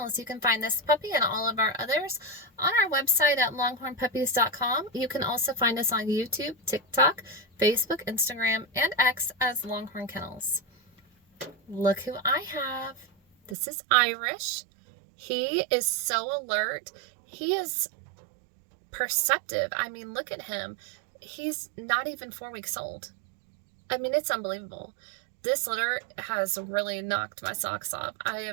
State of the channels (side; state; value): left; drops out; at 13.6 s